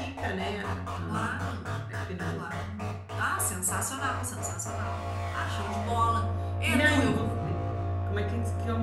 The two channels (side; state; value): both; identical; correlation 1.00